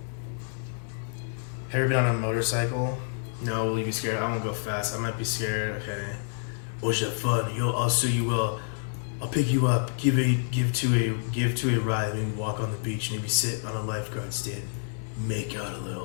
Have you ever been on a motorcycle? No, will you be scared? I won't go fast. I might be scared. Okay. Was that fun? I'll show you. I'll pick you up. Give to a ride. Maybe walk on the beach. Maybe sit on a lifeguard stand. Make out a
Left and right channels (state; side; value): silent; right; digital silence